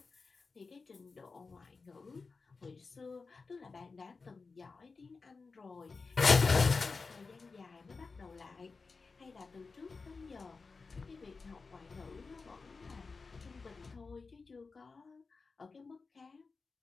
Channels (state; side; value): quieter; right; 4.4 dB